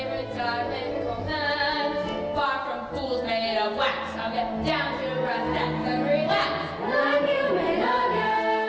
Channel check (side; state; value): both; identical; correlation 1.00